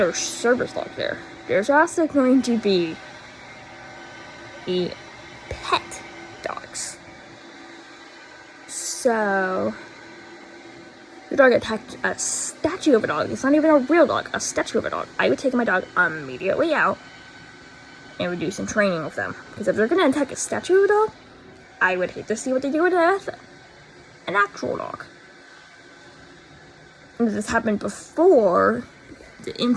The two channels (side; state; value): both; identical; correlation 1.00